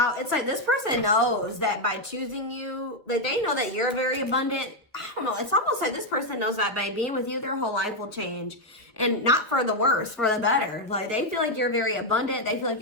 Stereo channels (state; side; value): normal; both; correlation 0.02